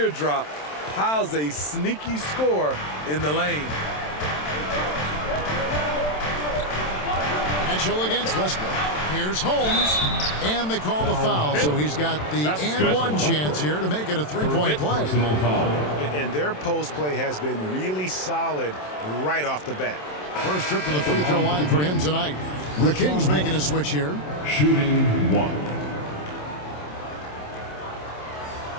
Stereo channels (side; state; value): right; late; 27 ms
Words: Powell's a sneaky score in the lane. Mitchell against Westbrook. Here's Holmes. And they call the foul, so he's got the and one chance here to make it a 3-point play. And their post play has been really solid right off the bat. First trip to the free throw line for him tonight. The Kings making a switch here. Shooting 1.